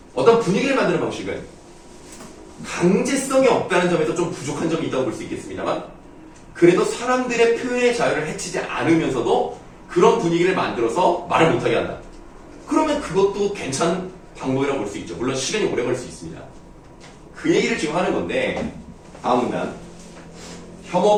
어떤 분위기를 만드는 방식은 강제성이 없다는 점에서 좀 부족한 점이 있다고 볼 수 있겠습니다만 그래도 사람들의 표현의 자유를 해치지 않으면서도 그런 분위기를 만들어서 말을 못하게 한다. 그러면 그것도 괜찮은 방법이라고 볼 수 있죠. 물론 시간이 오래 걸릴 수 있습니다. 그 얘기를 지금 하는 건데 다음 문단.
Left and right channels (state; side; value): identical; both; correlation 1.00